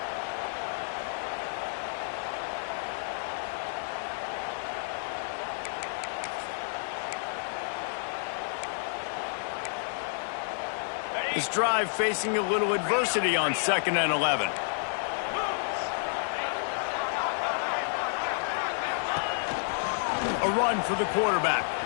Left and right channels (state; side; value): silent; right; digital silence